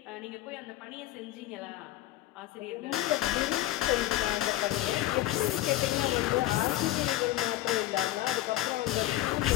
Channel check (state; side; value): quieter; right; 15.0 dB